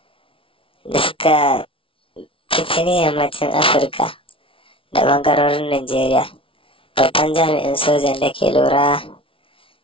fitini yammacin Afirka da ɓangarorin Najeriya. Babban jami'in sojan da ke lura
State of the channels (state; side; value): late; right; 0.25 ms